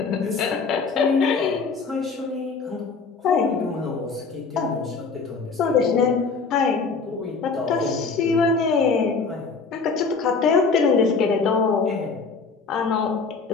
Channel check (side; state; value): right; quieter; 4.7 dB